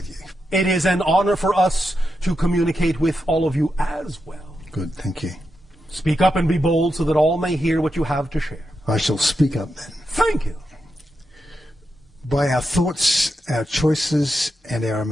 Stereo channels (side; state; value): both; normal; correlation 0.87